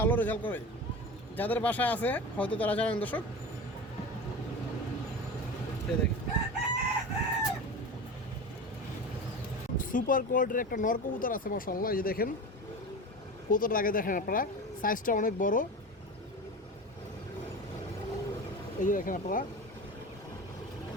রেজাল্ট করে। যাদের বাসায় আছে হয়তো তারা জানেন দর্শক। এই দেখেন সুপার কোয়ালিটির একটা নর কবুতর আছে মাশাআল্লাহ। এই যে দেখেন কবুতরটা আগে দেখেন আপনারা, সাইজটা অনেক বড়। এই যে দেখেন আপনারা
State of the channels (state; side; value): normal; both; correlation 0.30